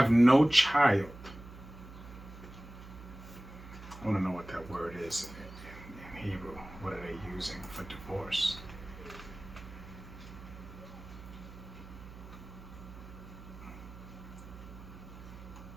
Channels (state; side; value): noise; right; hum, 15 dB below the sound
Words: no child, I want to know what that word is in Hebrew. What are they using for divorce?